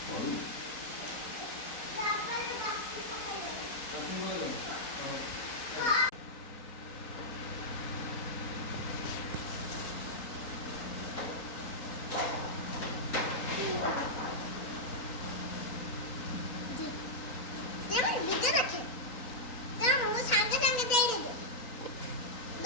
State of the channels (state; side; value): late; right; 4.0 ms